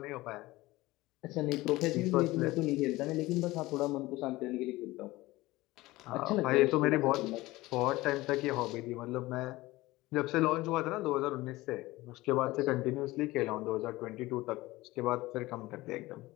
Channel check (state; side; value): quieter; right; 19.2 dB